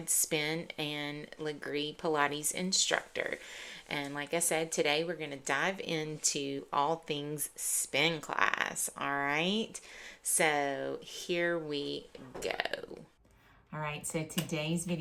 spin and Legree Pilates instructor. And like I said, today we're going to dive into all things spin class. All right. So here we go. All right. So today's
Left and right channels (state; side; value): identical; both; correlation 1.00